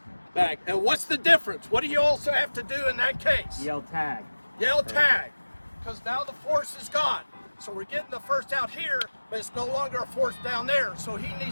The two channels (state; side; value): inverted; both; correlation -1.00